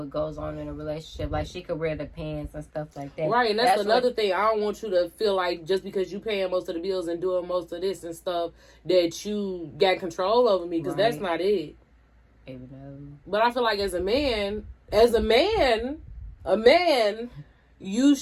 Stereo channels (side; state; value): both; identical; correlation 1.00